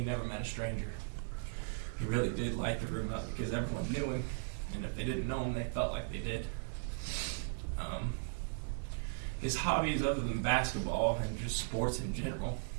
never met a stranger. He really did light the room up because everyone knew him, and if they didn't know him, they felt like they did. His hobbies, other than basketball and just sports in general,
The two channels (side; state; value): left; silent; digital silence